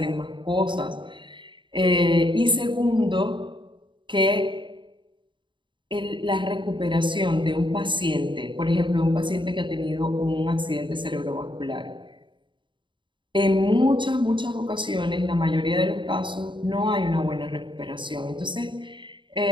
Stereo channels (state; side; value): late; left; 0.23 ms